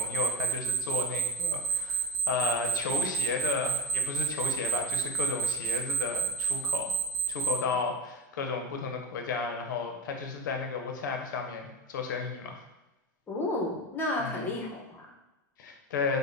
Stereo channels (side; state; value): both; normal; correlation 0.13